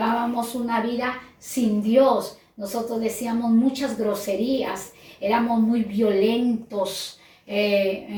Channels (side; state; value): both; identical; correlation 1.00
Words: una vida sin Dios, nosotros decíamos muchas groserías, éramos muy violentos,